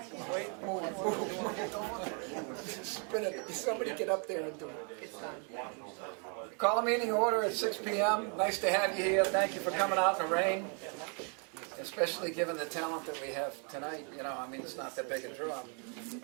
Wait, move. Somebody get up there and do it. Call a meeting order at 6 p.m. Nice to have you here. Thank you for coming out in the rain, especially given the talent that we have tonight. You know, I mean, it's not that big a draw.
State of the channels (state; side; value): quieter; left; 38.9 dB